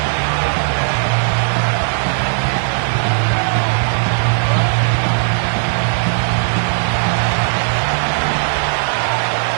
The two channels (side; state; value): left; silent; 58 dB below the other